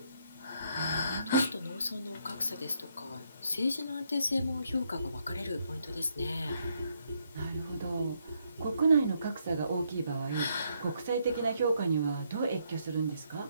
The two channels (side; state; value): both; inverted; correlation -0.74